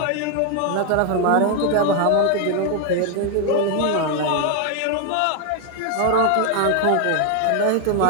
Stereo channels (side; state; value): both; different; correlation 0.00